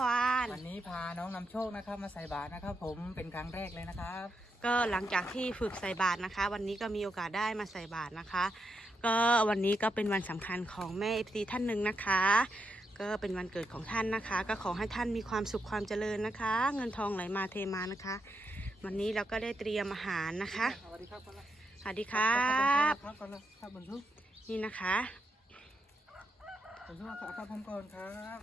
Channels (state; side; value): normal; both; correlation 0.83